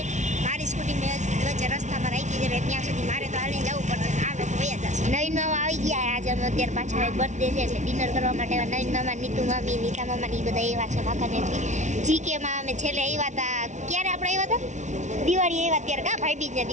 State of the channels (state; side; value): late; left; 0.34 ms